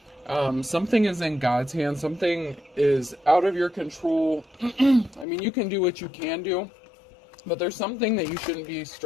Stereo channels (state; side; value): drops out; right; at 5.2 s